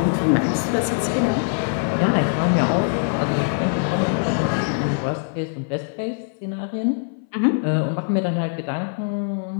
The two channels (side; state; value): right; silent; 61 dB below the other